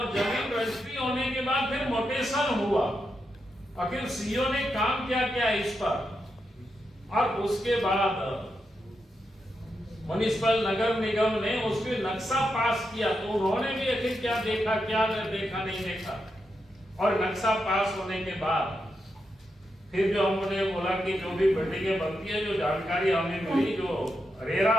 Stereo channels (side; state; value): both; normal; correlation 0.85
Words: जमीन रजिस्ट्री होने के बाद फिर मोटेशन हुआ, आखिर सीओ ने काम क्या किया इस पर, और उसके बाद म्युनिसिपल नगर निगम ने उसके नक्शा पास किया, तो उन्होंने भी आखिर क्या देखा, क्या देखा, नहीं देखा। और नक्शा पास होने के बाद फिर जो हमने बोला कि जो भी बिल्डिंगें बनती है, जो जानकारी हमें मिली, जो रेरा